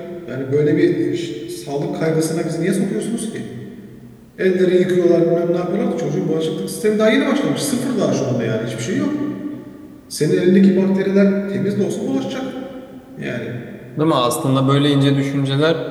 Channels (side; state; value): both; identical; correlation 1.00